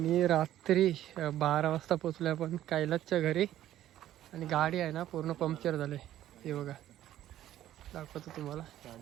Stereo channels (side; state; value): left; quieter; 12.8 dB